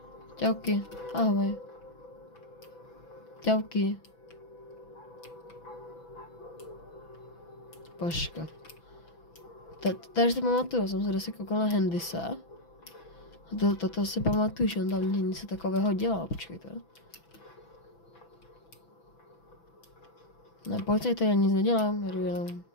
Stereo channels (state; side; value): late; right; 6.0 ms